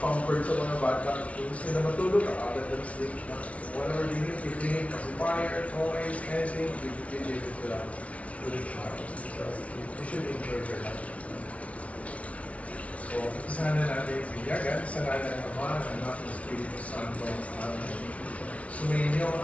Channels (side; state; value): right; late; 0.065 ms